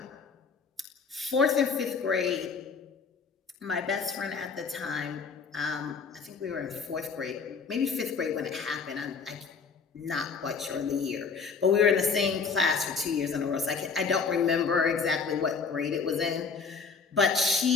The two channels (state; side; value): quieter; right; 5.3 dB